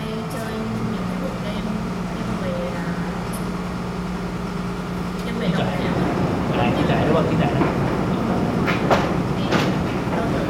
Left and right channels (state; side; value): identical; both; correlation 1.00